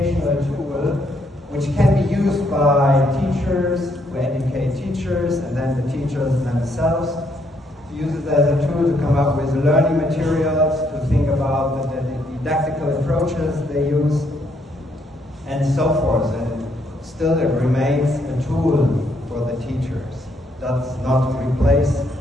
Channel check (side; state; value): both; normal; correlation 0.72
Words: tool which can be used by teachers who educate teachers, and then the teachers themselves use it as a tool to come up with learning materials, to think about the didactical approaches they use, and so forth. And still it remains a tool for the teachers. Does not replace